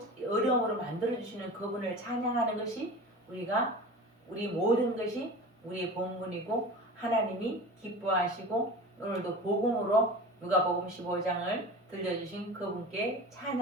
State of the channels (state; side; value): normal; both; correlation 0.34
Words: 어려움으로 만들어주시는 그분을 찬양하는 것이 우리 모든 것이 우리의 본분이고 하나님이 기뻐하시고 오늘도 복음으로 누가복음 15장을 들려주신 그분께